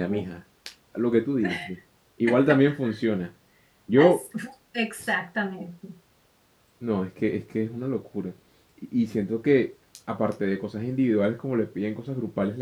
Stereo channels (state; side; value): identical; both; correlation 1.00